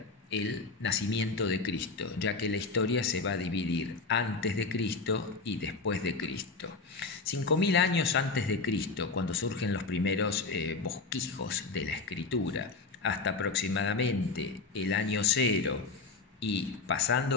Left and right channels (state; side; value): quieter; right; 4.1 dB